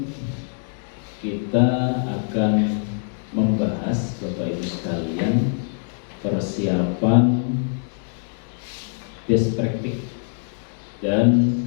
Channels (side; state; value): right; silent; 63 dB below the other